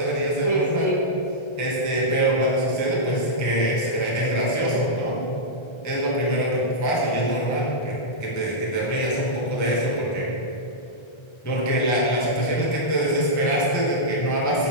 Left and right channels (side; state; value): right; late; 1.3 ms